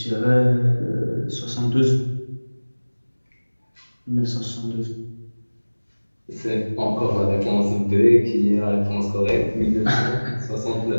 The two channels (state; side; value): inverted; both; correlation -1.00